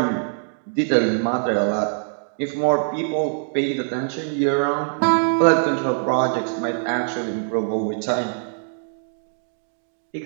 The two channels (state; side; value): silent; left; digital silence